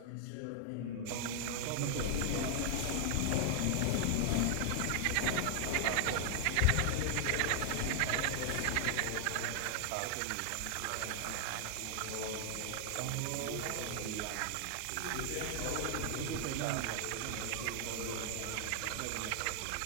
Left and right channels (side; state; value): both; different; correlation 0.00